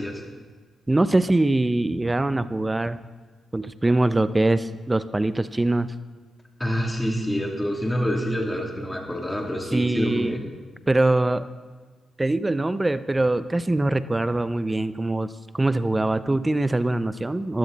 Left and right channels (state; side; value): normal; both; correlation 0.97